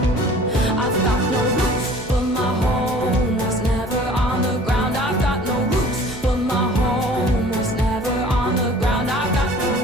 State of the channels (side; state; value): both; normal; correlation 0.48